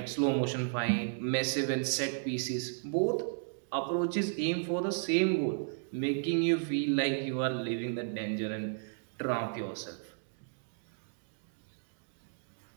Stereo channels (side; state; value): left; silent; digital silence